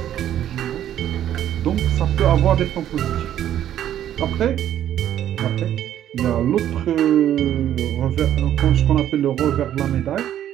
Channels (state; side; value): quieter; left; 11.2 dB